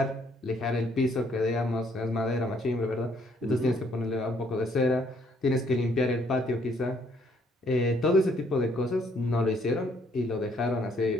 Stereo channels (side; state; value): both; normal; correlation 0.67